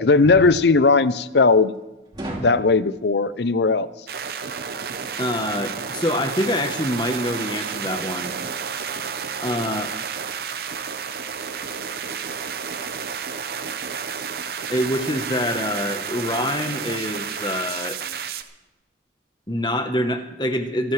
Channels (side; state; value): both; normal; correlation 0.11